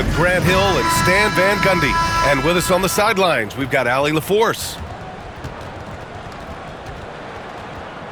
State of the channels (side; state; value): both; identical; correlation 1.00